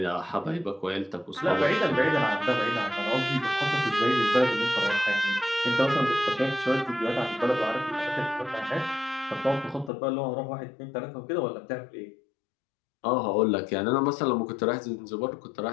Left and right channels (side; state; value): right; drops out; at 9.9 s